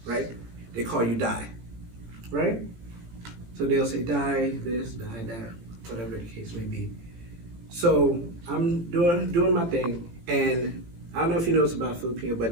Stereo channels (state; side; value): late; left; 18 ms